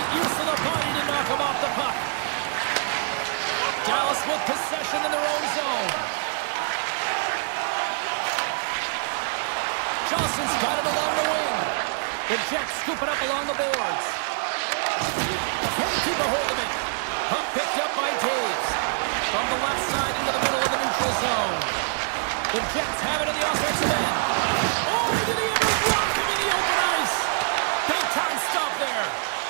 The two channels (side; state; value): left; silent; digital silence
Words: use of the body to knock him off the puck. Dallas with possession in their own zone. Johnson's got it along the wing. The Jets scoop it up along the boards. Can't keep a hold of it. Puck picked up by Taves. From the left side into the middle of the neutral zone. The Jets have it in the offensive end. Oh, did he ever block him in the open ice? Big time stop there.